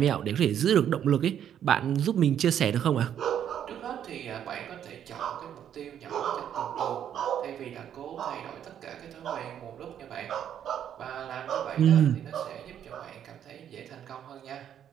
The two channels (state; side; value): quieter; left; 9.6 dB